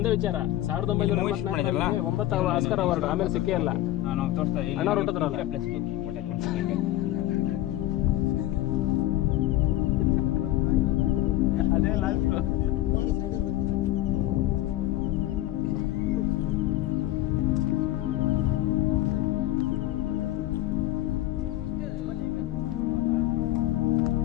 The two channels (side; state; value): right; quieter; 15.0 dB